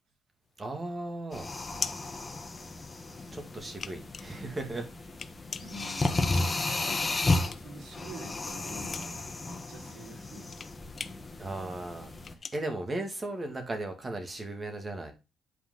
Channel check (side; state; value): both; normal; correlation 0.90